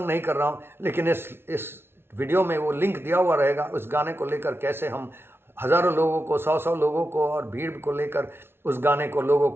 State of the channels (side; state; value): left; late; 0.12 ms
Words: नहीं कर रहा हूँ, लेकिन इस वीडियो में वो लिंक दिया हुआ रहेगा। उस गाने को लेकर कैसे हम हज़ारों लोगों को, 100 लोगों को और भीड़ को लेकर उस गाने को, लोगों